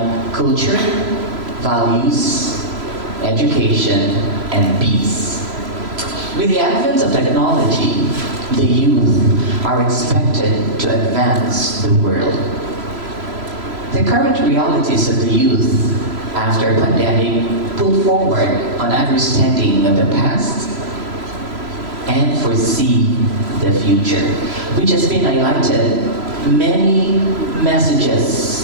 culture, values, education, and peace. With the advent of technology, the youth are expected to advance the world. The current realities of the youth after pandemic put forward on understanding of the past and foresee the future, which has been highlighted many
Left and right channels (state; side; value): late; left; 3.0 ms